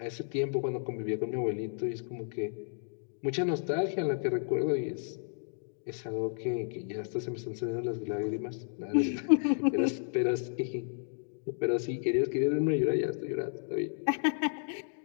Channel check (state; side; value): silent; right; digital silence